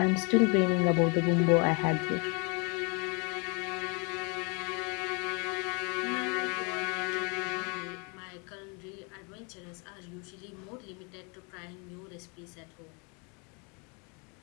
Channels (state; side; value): quieter; right; 33.4 dB